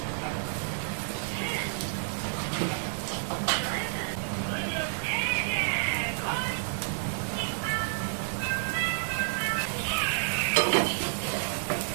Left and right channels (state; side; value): silent; left; digital silence